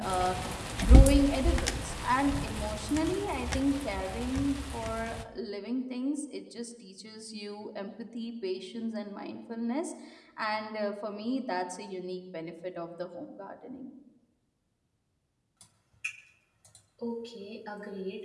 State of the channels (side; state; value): both; identical; correlation 1.00